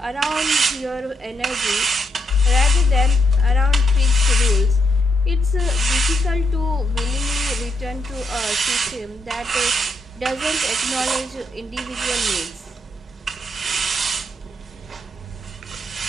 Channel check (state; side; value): normal; both; correlation 0.79